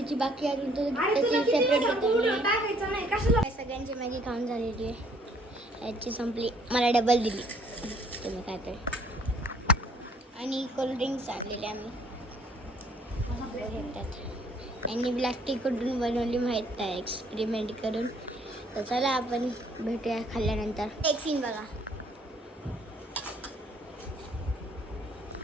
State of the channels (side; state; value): both; normal; correlation 0.61